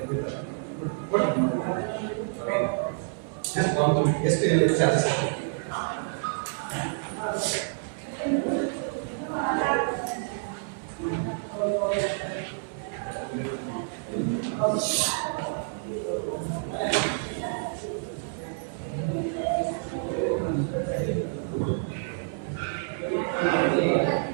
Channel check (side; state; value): left; silent; digital silence